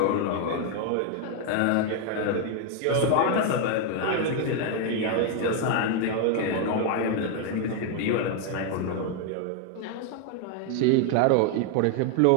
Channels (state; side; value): different; both; correlation 0.01